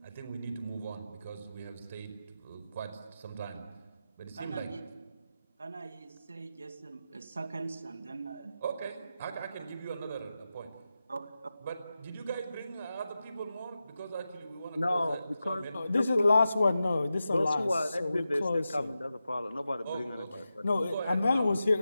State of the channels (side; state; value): both; inverted; correlation -0.91